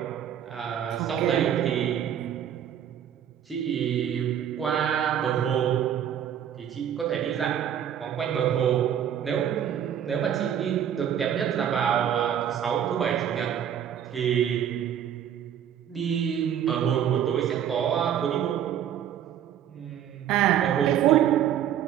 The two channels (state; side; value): quieter; left; 9.6 dB